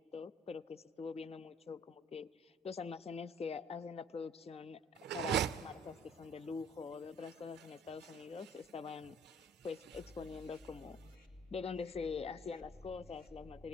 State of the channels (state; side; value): normal; both; correlation 0.55